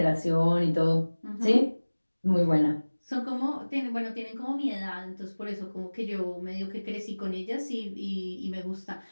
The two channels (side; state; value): both; inverted; correlation -1.00